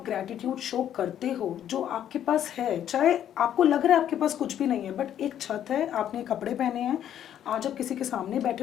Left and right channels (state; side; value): quieter; right; 10.4 dB